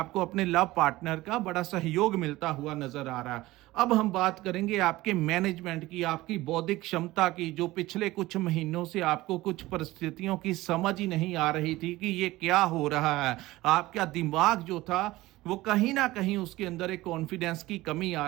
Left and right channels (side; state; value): left; quieter; 18.3 dB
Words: अपने लव पार्टनर का बड़ा सहयोग मिलता हुआ नजर आ रहा है। अब हम बात करेंगे आपके मैनेजमेंट की, आपकी बौद्धिक क्षमता की। जो पिछले कुछ महीनों से आपको कुछ परिस्थितियों की समझ ही नहीं आ रही थी कि ये क्या हो रहा है, आपका दिमाग जो था वो कहीं ना कहीं उसके अंदर एक कॉन्फिडेंस की कमी आ